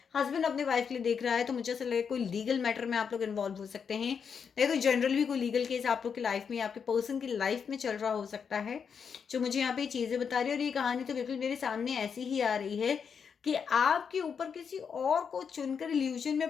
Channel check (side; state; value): right; quieter; 6.6 dB